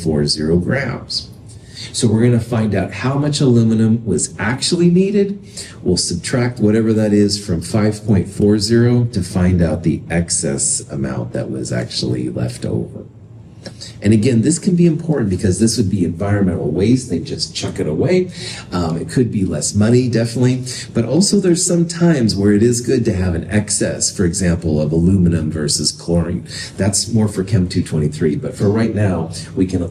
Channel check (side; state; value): both; identical; correlation 1.00